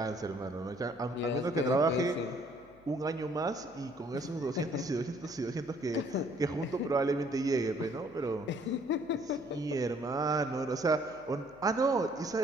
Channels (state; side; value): noise; left; hum, 27 dB below the sound